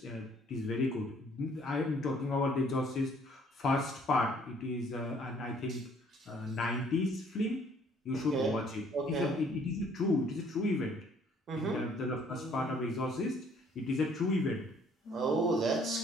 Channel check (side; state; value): both; normal; correlation 0.61